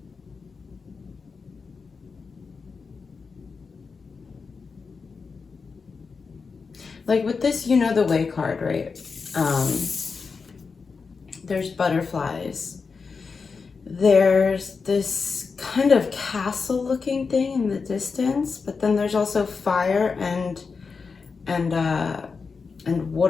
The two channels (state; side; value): quieter; right; 5.0 dB